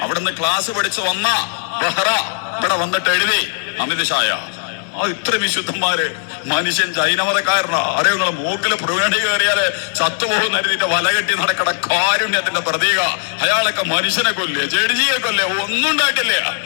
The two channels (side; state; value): right; silent; 57 dB below the other